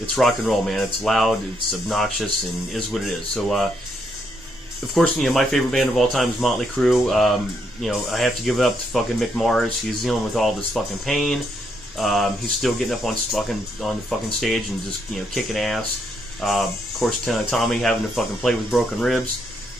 rock and roll, man. It's loud, it's obnoxious, and is what it is. So, of course, my favorite band of all time is Motley Crue. I have to give it up to fucking Mick Mars. He's dealing with all this fucking pain. He's still getting up on the fucking stage and just kicking ass. Of course, Tommy having to fucking play with broken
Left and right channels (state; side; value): normal; both; correlation 0.76